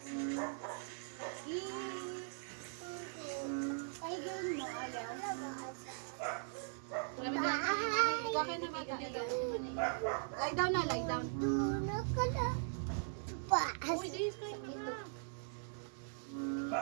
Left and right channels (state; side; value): silent; left; digital silence